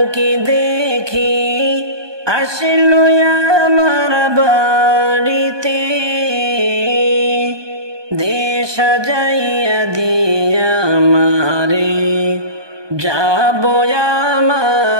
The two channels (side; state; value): left; late; 1.2 ms